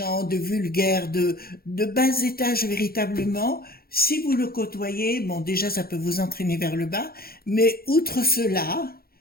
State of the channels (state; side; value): late; right; 0.44 ms